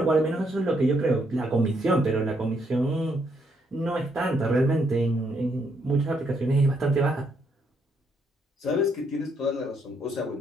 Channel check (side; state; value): both; normal; correlation 0.74